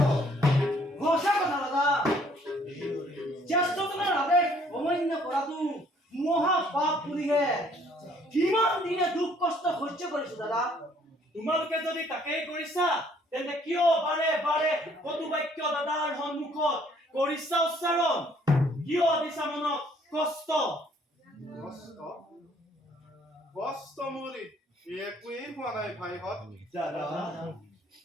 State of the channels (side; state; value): both; normal; correlation 0.62